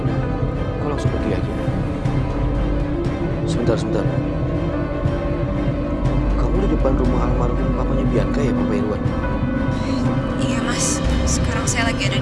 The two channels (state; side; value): identical; both; correlation 1.00